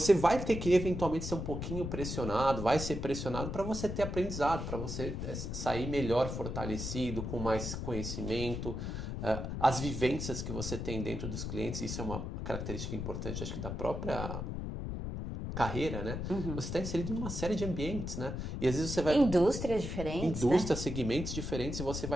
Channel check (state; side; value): noise; left; rumble, 4 dB below the sound